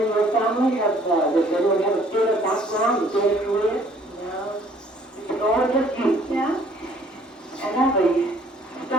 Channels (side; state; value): both; normal; correlation 0.59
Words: in your family does anyone have a theater background, a theater career? No. It's all just you. Yeah? And now the